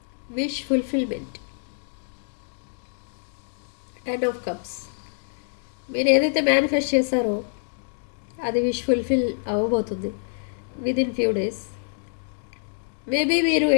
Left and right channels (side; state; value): right; silent; digital silence